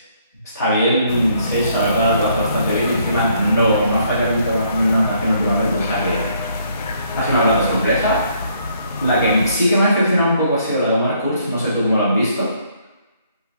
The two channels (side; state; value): both; inverted; correlation -0.68